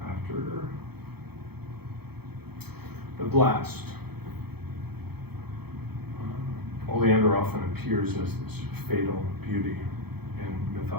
after the blast. Oleander often appears as this fatal beauty in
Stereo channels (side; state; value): left; late; 0.97 ms